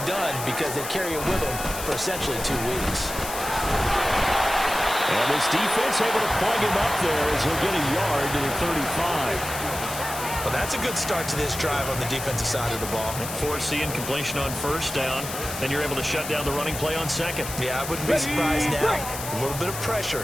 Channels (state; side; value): noise; left; hiss, 8 dB below the sound